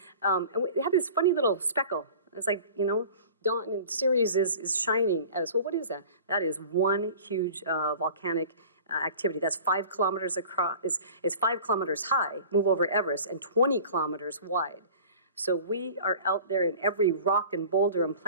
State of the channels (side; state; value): both; inverted; correlation -0.42